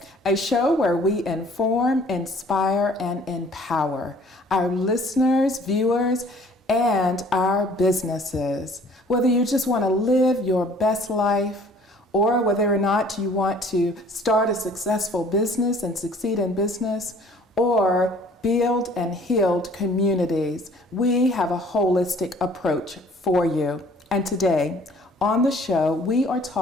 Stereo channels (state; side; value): normal; both; correlation 0.54